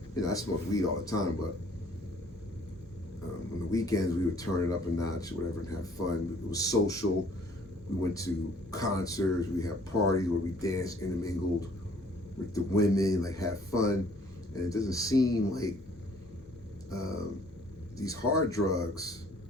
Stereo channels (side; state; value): both; normal; correlation 0.58